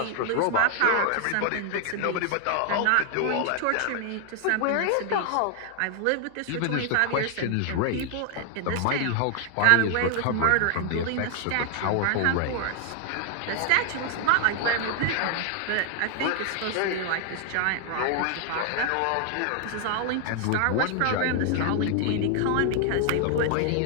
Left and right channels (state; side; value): different; both; correlation 0.00